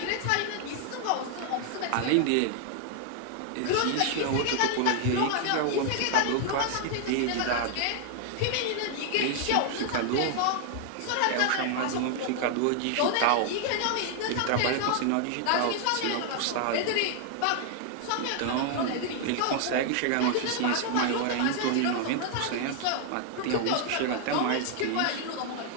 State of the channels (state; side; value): different; both; correlation 0.00